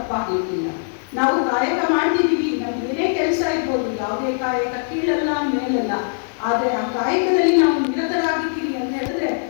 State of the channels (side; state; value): right; silent; digital silence